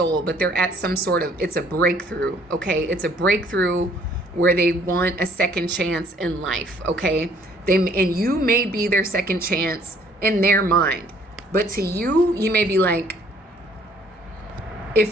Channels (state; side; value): normal; both; correlation 0.60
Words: but they're at some sort of, it's a breakthrough, okay? It's a breakthrough where they want a second chance in life, okay? And you may be their second chance in their mind. But to you, you may be like,